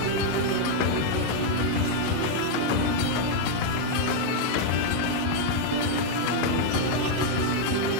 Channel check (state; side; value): different; both; correlation 0.00